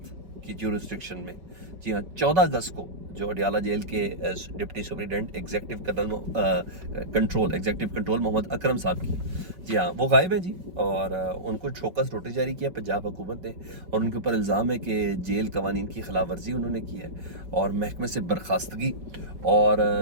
की ज्यूरिस्डिक्शन में। जी हाँ, 14 अगस्त को जो अडियाला जेल के deputy superintendent executive control Mohammad Akram साहब की, जी हाँ, वो गायब है जी। और उनको शोकस नोटिस जारी किया पंजाब हुकूमत ने और उनके ऊपर इल्ज़ाम है कि जेल कवानीन की खिलाफ वर्जी उन्होंने की है और महकमे से बर्खास्तगी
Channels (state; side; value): late; left; 5.3 ms